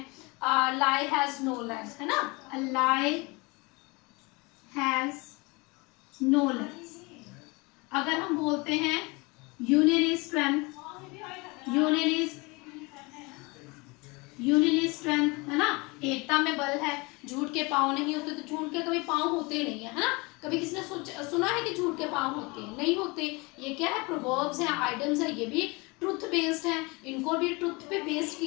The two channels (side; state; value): right; quieter; 26.6 dB